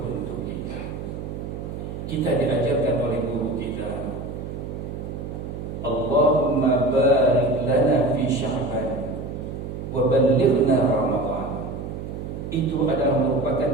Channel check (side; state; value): right; noise; hum, 7 dB below the sound